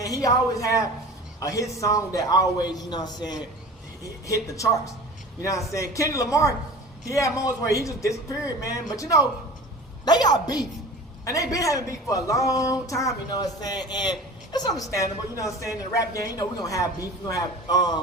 He always had a hit song that always, you know what I'm saying, hit the charts. You know what I'm saying? Kendrick Lamar, he had moments where he just disappeared, man. But you know, they got beef, and they been having beef for a long time. You know what I'm saying? And it's understandable. You know what I'm saying? In the rap game, you know, we're gonna have beef. We're gonna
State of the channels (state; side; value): normal; both; correlation 0.38